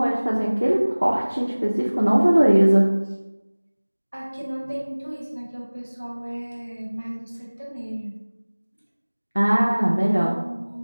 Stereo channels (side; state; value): both; inverted; correlation -1.00